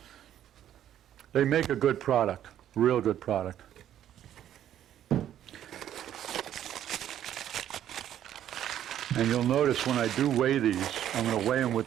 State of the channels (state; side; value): quieter; left; 11.0 dB